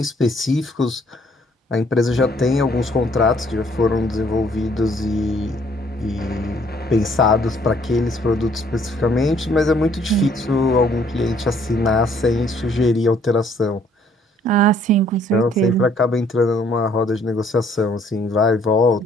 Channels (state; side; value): normal; both; correlation 0.63